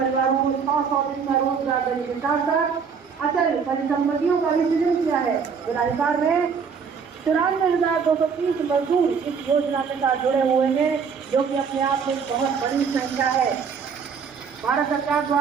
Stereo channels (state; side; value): quieter; left; 6.1 dB